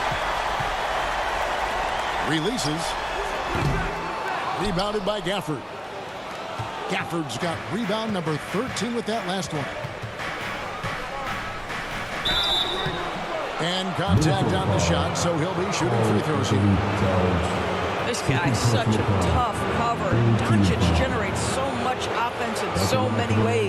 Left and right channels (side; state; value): both; identical; correlation 1.00